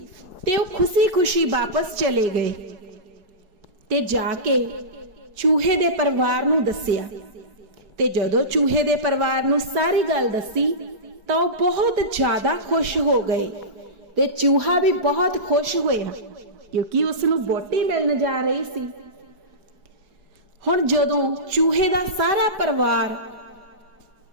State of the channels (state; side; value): late; left; 4.7 ms